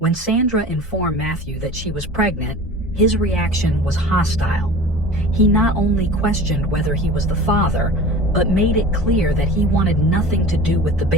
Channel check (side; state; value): both; normal; correlation 0.37